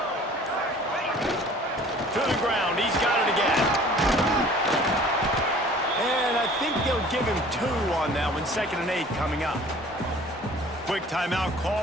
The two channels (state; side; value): normal; both; correlation 0.49